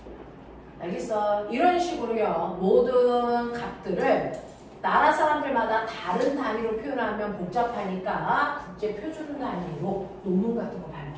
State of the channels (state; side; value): identical; both; correlation 1.00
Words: 알겠어? 이런 식으로요. 모든 값들을 나라 사람들마다 다른 단위로 표현하면 복잡하니까 국제 표준 단위로 논문 같은 거